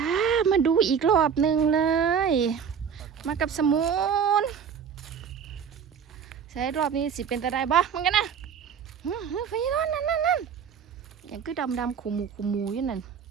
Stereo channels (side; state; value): left; quieter; 7.3 dB